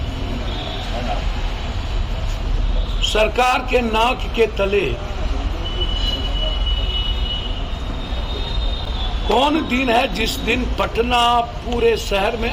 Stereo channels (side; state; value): both; identical; correlation 1.00